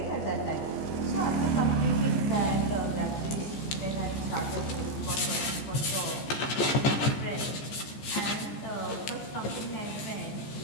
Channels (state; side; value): late; right; 15 ms